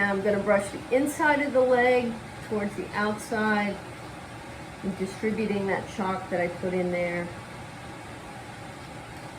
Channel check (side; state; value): both; identical; correlation 1.00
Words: I'm going to brush the inside of the leg towards the outside and distributing that chalk that I put in there.